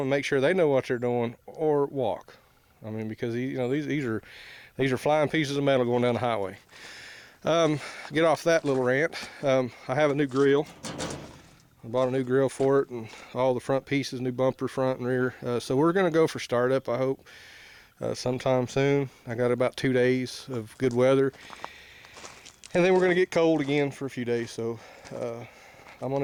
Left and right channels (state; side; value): identical; both; correlation 1.00